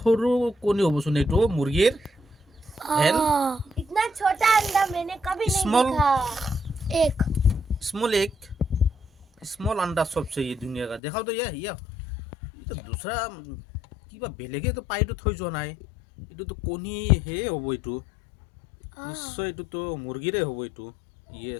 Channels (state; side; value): drops out; right; at 11.0 s